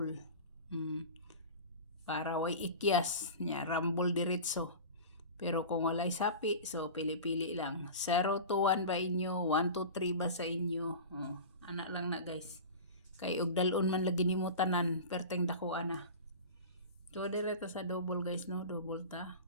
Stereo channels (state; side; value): inverted; both; correlation -0.32